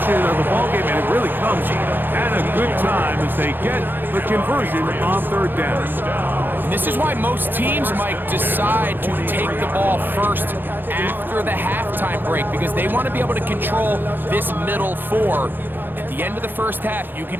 of the ballgame, and it really comes at a good time as they get the conversion on 3rd down. This is why most teams might decide to take the ball first after the halftime break, because they want to be able to control this middle 4. At the end of the first half, you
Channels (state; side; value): late; left; 0.095 ms